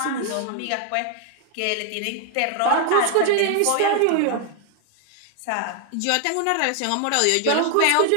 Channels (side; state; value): both; different; correlation 0.00